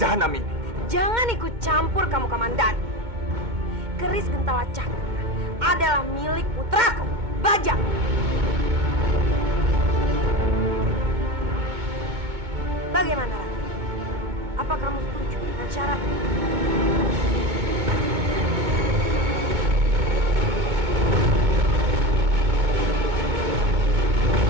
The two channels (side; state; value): left; late; 2.2 ms